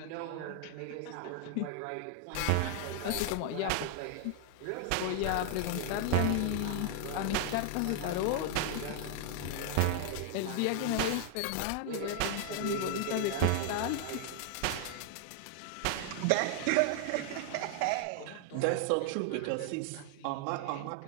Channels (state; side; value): different; both; correlation 0.00